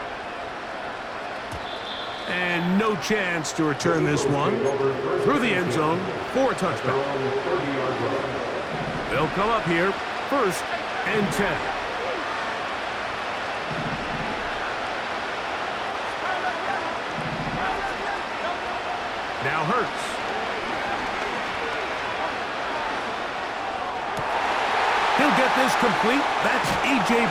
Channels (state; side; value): identical; both; correlation 1.00